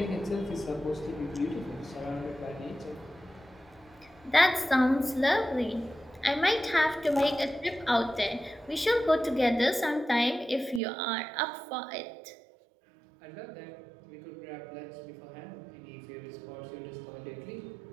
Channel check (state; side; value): drops out; left; at 10.8 s